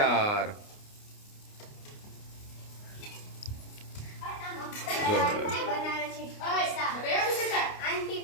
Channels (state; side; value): late; right; 29 ms